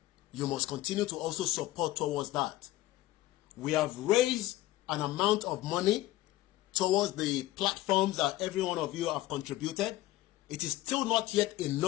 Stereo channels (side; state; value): right; quieter; 16.3 dB